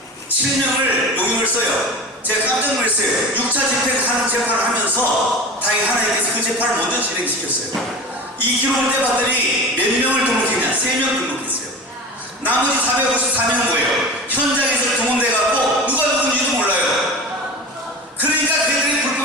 용역을 써요. 제가 깜짝 놀랐어요. 6차 집행하는 재판을 하면서 다행히 하나님께서 그 재판을 먼저 진행시켰어요. 이 기록을 떼봤더니 몇 명을 등록했냐? 3명 등록했어요. 나머지 454명은 뭐예요? 현장에서 동원돼갖고 누가 누군지도 몰라요. 그러니까 걔들이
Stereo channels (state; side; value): normal; both; correlation 0.33